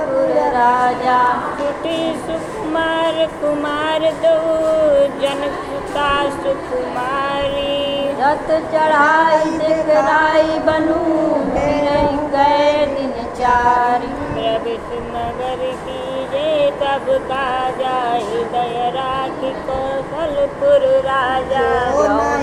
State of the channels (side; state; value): both; identical; correlation 1.00